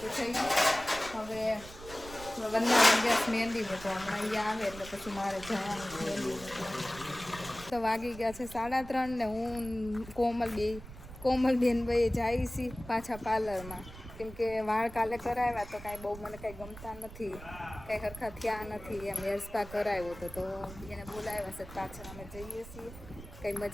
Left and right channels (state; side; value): noise; right; rumble, 15 dB below the sound